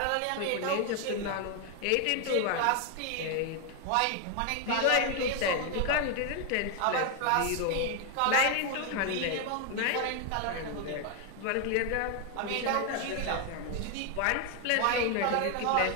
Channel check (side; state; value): both; different; correlation 0.01